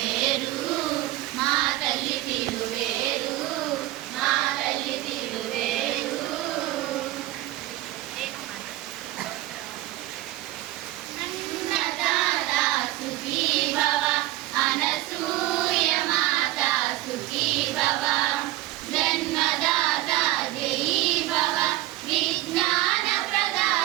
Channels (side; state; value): left; quieter; 16.3 dB